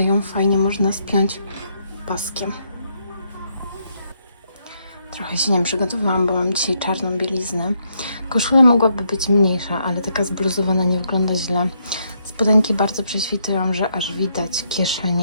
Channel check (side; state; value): both; inverted; correlation -0.76